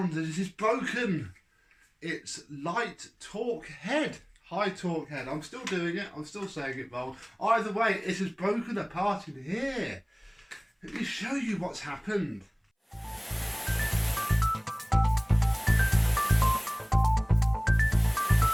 that it is broken. It's light torque head, high torque head. I'm still doing it, I'm still saying it wrong. Either way, it has broken apart in here. Let me show you what's happened.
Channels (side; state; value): both; identical; correlation 1.00